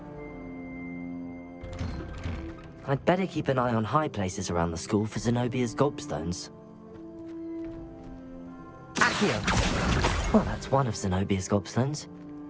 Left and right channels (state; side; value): identical; both; correlation 1.00